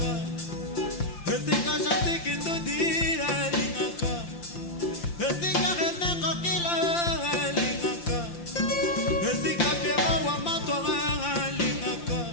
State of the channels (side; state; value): right; late; 5.8 ms